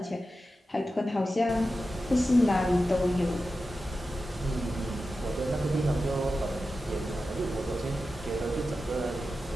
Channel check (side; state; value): both; normal; correlation 0.92